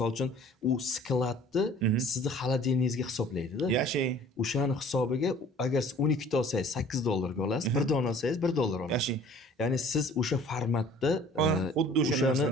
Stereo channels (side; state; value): both; normal; correlation 0.50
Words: uchun u skladni sizni xolodilningizga hisoblaydi-da. Yashang. O'shani hisobiga agar siz 12 ta olsangiz $8 ga olasiz, bir dona olsangiz $1 olasiz. Yashang. Ya'ni siz o'sha formatda xuddi o'shani,